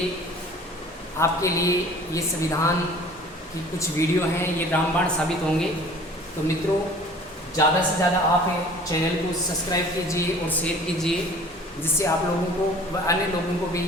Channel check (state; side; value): normal; both; correlation 0.48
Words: आपके लिए ये संविधान की कुछ वीडियो हैं, ये रामबाण साबित होंगे। तो मित्रों, ज़्यादा से ज़्यादा आप चैनल को सब्सक्राइब कीजिए और शेयर कीजिए, जिससे आप लोगों को व अन्य लोगों को